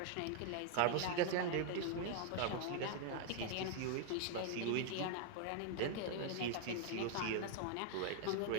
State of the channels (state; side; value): different; both; correlation 0.00